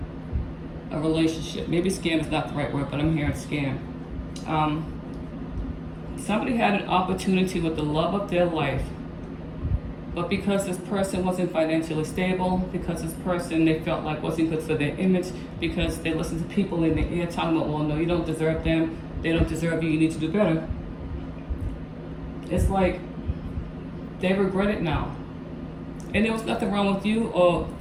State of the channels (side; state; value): both; identical; correlation 1.00